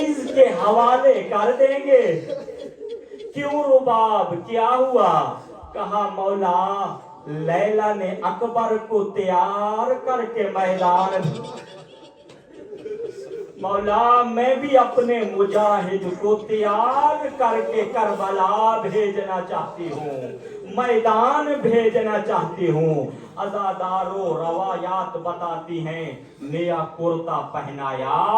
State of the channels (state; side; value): identical; both; correlation 1.00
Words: کے حوالے کر دیں گے. کیوں رباب کیا ہوا؟ کہا مولا لیلا نے اکبر کو تیار کر کے میدان مولا میں بھی اپنے مجاہد کو تیار کر کے کربلا بھیجنا چاہتی ہوں، میدان بھیجنا چاہتی ہوں۔ عزادارو روایات بتاتی ہیں نیا کرتا پہنایا